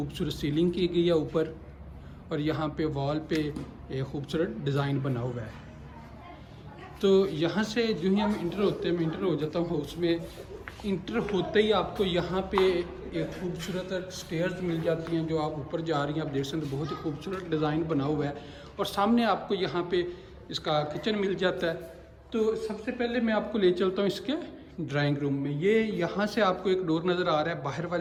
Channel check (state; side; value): identical; both; correlation 1.00